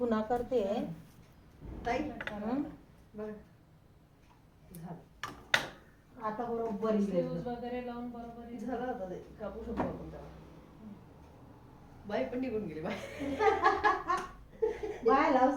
करते. ताई हं? बघ झालं. आता बरोबर Sleeves वगैरे लावून बरोबर येईल. झालं आता ते. कापू शकतो आपण त्याला. बाई पण निघून गेली बाई. बाय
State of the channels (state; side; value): identical; both; correlation 1.00